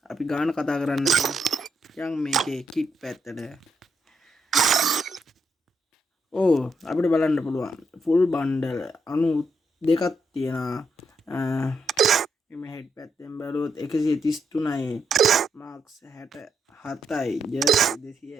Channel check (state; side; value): normal; both; correlation 0.80